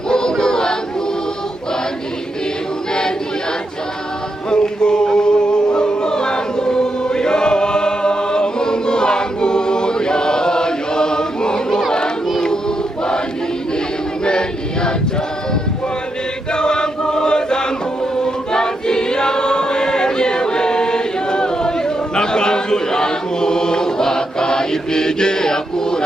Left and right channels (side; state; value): both; normal; correlation 0.83